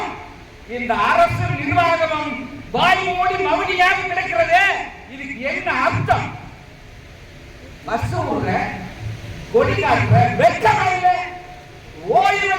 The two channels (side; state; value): both; identical; correlation 1.00